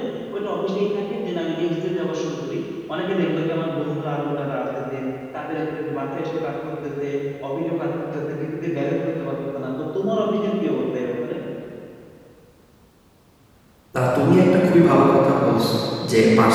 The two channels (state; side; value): identical; both; correlation 1.00